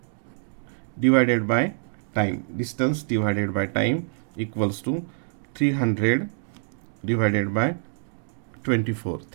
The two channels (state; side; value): silent; left; digital silence